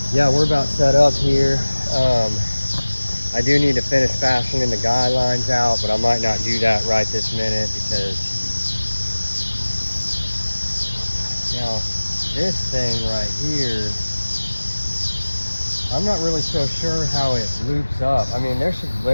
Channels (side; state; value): both; inverted; correlation -1.00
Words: yeah, we're about set up here. I do need to finish fastening the guy lines out, but I might not do that right this minute because now this thing right here, I'm not really so sure how it loops up. I mean, there should